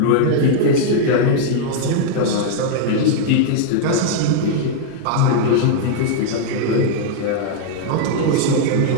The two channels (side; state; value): both; different; correlation -0.01